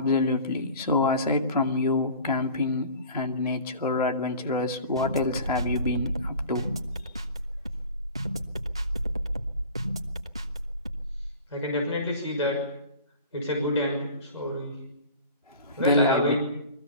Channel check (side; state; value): both; inverted; correlation -0.42